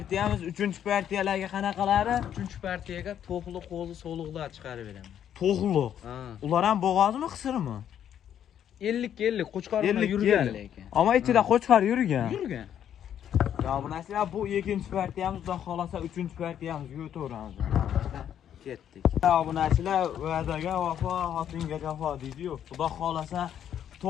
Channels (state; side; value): quieter; right; 9.8 dB